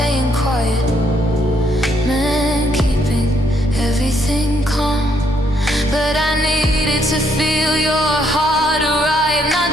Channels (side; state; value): both; normal; correlation 0.72